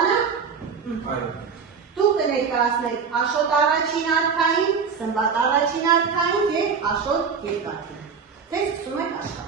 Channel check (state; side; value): quieter; left; 6.0 dB